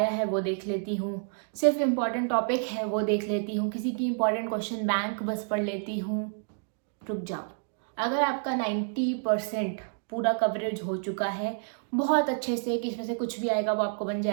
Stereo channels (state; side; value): silent; left; digital silence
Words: है वो देख लेती हूँ, सिर्फ इम्पॉर्टेंट टॉपिक है वो देख लेती हूँ, किसी की इम्पॉर्टेंट क्वेश्चन बैंक बस पढ़ लेती हूँ। रुक जाओ। अगर आपका 90% पूरा कवरेज हो चुका है बहुत अच्छे से, कि इसमें से कुछ भी आएगा वो आपको बन